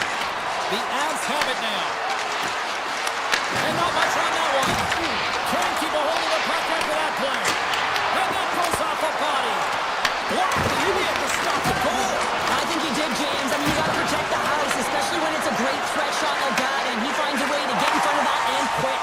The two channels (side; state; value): both; identical; correlation 1.00